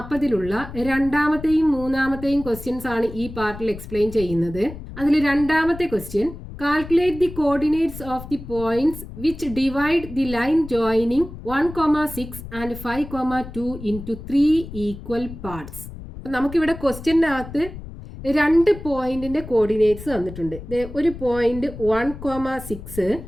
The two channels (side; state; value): left; noise; rumble, 12 dB below the sound